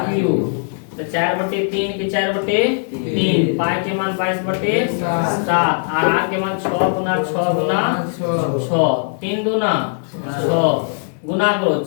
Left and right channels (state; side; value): silent; right; 66 dB below the other